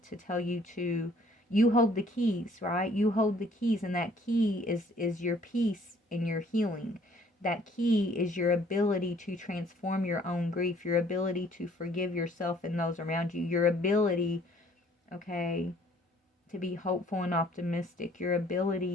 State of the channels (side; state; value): both; normal; correlation 0.59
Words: tell you to, you hold the keys, right? You hold the keys, and that key is your peace and your healing. That key is your ability to transform your own grief, your ability to forgive yourself and those around you, your ability, okay, to be hopeful and optimistic, your